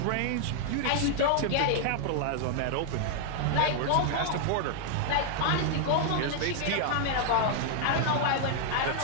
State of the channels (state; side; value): different; both; correlation 0.00